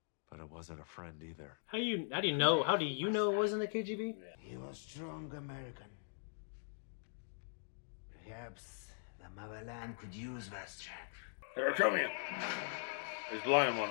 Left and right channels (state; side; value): silent; right; digital silence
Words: But it wasn't a friend either. How do you know? How do you know it wasn't the KGB? He was strong American. Perhaps the motherland could use that strength. They're coming. There's blood in one